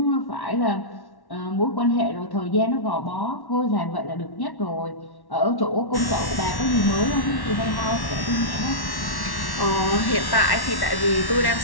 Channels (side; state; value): right; late; 1.1 ms